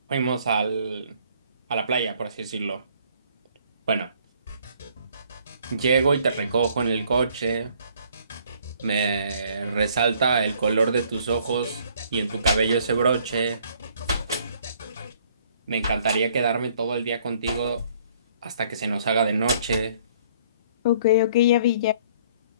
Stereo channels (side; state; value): both; inverted; correlation -0.61